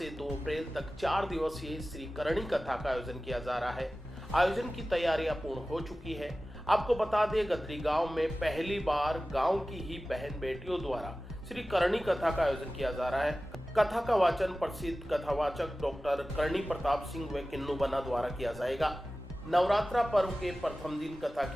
2 अप्रैल तक 4 दिवसीय श्री करणी कथा का आयोजन किया जा रहा है। आयोजन की तैयारियां पूर्ण हो चुकी है। आपको बता दें, गदरी गांव में पहली बार गांव की ही बहन बेटियों द्वारा श्री करणी कथा का आयोजन किया जा रहा है। कथा का वाचन प्रसिद्ध कथावाचक डॉक्टर करणी प्रताप सिंह व किन्नू बना द्वारा किया जाएगा। नवरात्रा पर्व के प्रथम दिन कथा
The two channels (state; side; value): normal; both; correlation 0.96